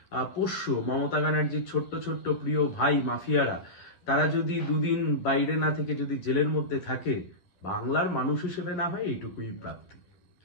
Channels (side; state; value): right; late; 11 ms